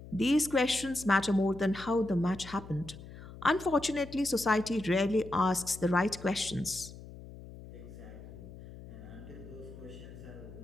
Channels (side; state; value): left; noise; hum, 15 dB below the sound